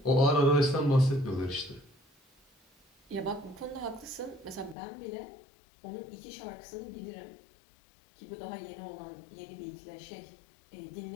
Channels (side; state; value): right; drops out; at 4.8 s